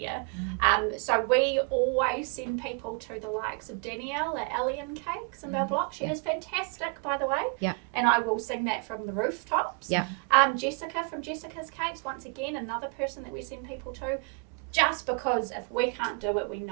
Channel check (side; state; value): left; quieter; 36.0 dB